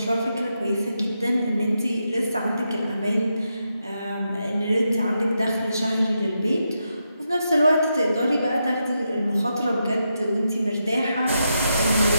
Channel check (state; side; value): inverted; both; correlation -0.84